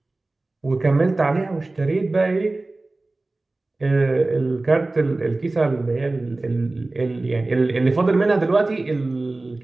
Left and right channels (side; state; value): left; quieter; 3.1 dB